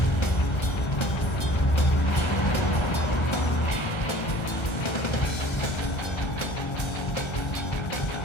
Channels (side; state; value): right; late; 1.3 ms